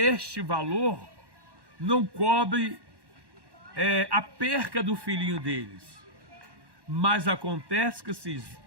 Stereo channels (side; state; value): left; late; 1.1 ms